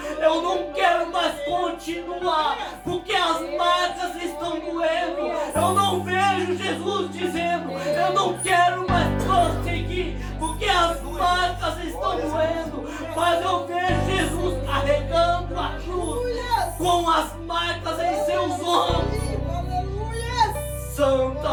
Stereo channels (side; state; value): both; identical; correlation 1.00